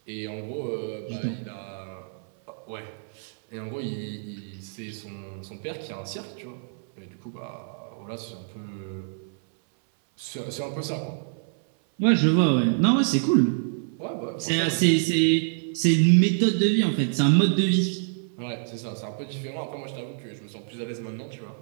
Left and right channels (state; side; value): silent; left; 60 dB below the other